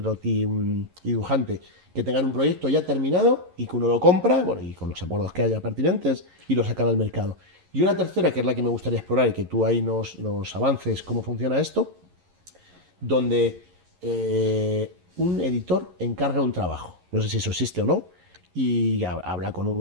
dibujante, que tengan un proyecto ya terminado y que uno lo compra, bueno, y con los acuerdos que haya pertinentes, y lo sacan al mercado. Y una tercera, que es la que me gustaría explorar y que tú ahí nos avances cómo funciona esto, donde un editor encarga un trabajo, no sé si eso existe o no, y habla con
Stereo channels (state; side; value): late; left; 11 ms